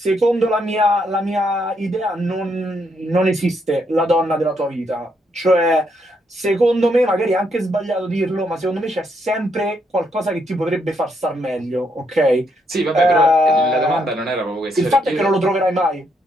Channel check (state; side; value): normal; both; correlation 0.75